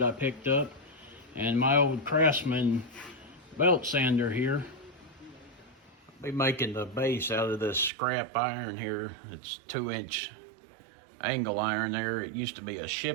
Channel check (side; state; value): left; drops out; at 7.9 s